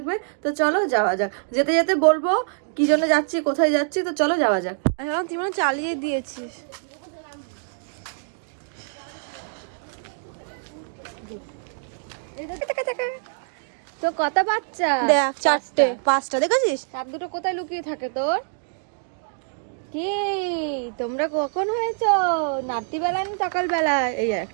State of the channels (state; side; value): silent; left; digital silence